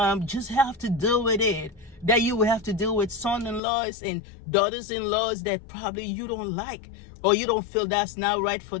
just have to deal with it. That you will have to deal with son-in-laws and daughters-in-laws that probably you don't like, or you don't feel that's not right for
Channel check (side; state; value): right; drops out; at 3.6 s